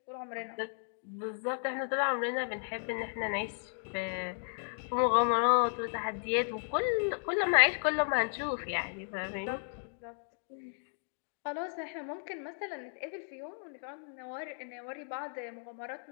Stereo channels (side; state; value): right; silent; digital silence